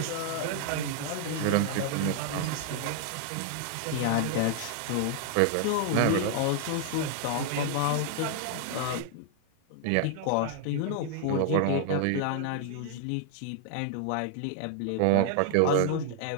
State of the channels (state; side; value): different; both; correlation 0.00